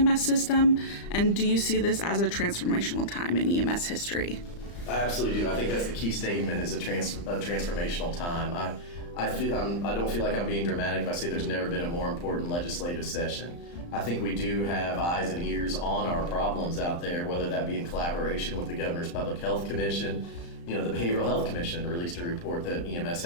system? And do you see this as a transformational time in EMS history? I absolutely do. I think that's the key statement, is a transformational time. I don't feel like I'm being dramatic if I say there's never been a more important legislative session. I think we do have eyes and ears on our problems out there, whether that be in collaboration with the Governor's Public Health Commission. The Behavioral Health Commission released a report that EMS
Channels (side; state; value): right; late; 35 ms